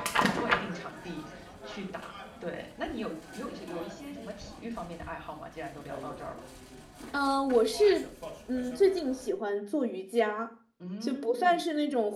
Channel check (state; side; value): identical; both; correlation 1.00